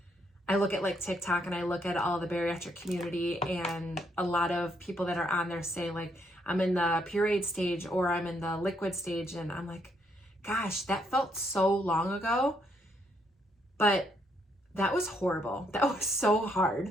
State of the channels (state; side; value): normal; both; correlation 0.73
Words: I look at like TikTok and I look at all the bariatric community, and a lot of people that are on there say like, I'm in the pureed stage or I'm in the liquid stage, and I'm like, gosh, that felt so long ago, but that was horrible. That was so